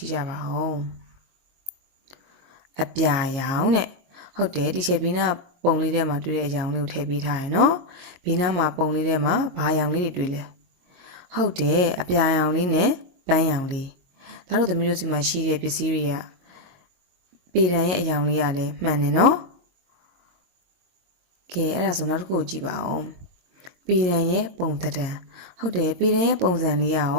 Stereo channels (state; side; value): late; left; 22 ms